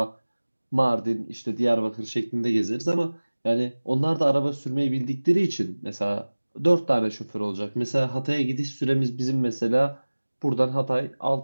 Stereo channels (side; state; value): both; inverted; correlation -1.00